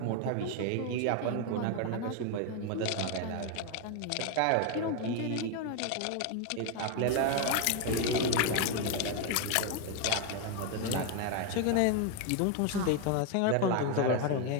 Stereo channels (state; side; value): different; both; correlation 0.01